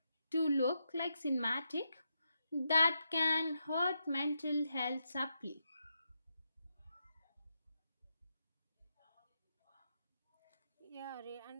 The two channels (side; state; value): both; inverted; correlation -0.83